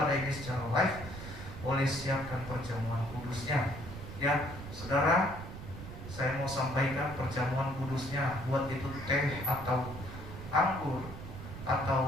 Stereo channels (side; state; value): right; noise; rumble, 11 dB below the sound